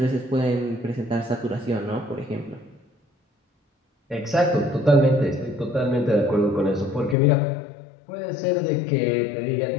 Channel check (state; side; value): drops out; right; at 7.2 s